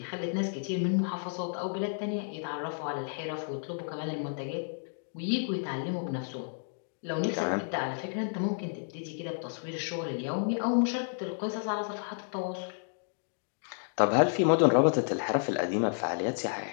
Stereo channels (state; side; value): silent; right; digital silence